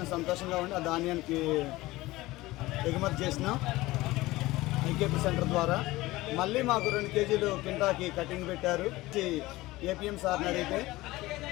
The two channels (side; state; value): right; quieter; 18.9 dB